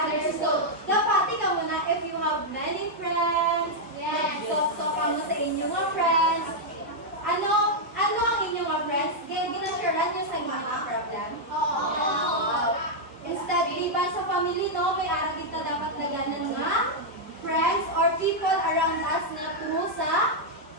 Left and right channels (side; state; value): both; normal; correlation -0.03